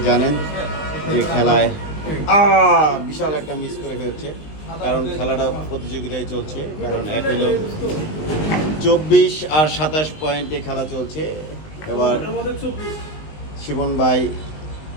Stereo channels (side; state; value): right; late; 19 ms